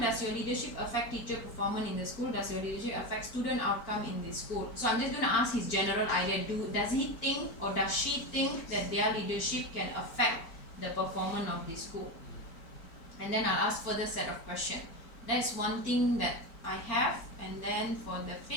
your leadership affect teacher performance in the school? Does your leadership affect student outcome in the school? So I'm just going to ask his general idea. Does he think or does she think that their leadership can affect the performance of the school? And then I'll ask further set of questions. That's one thing that I have. And then for the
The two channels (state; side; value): late; right; 4.4 ms